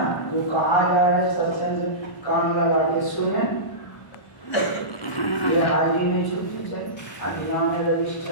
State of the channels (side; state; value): right; late; 1.2 ms